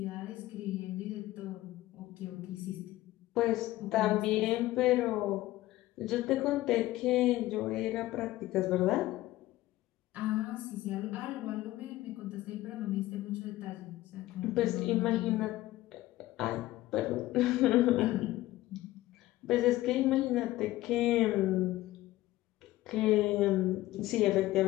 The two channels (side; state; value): right; quieter; 16.6 dB